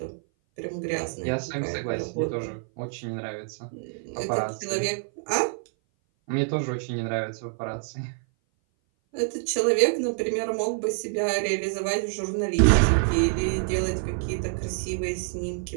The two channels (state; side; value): silent; left; 57 dB below the other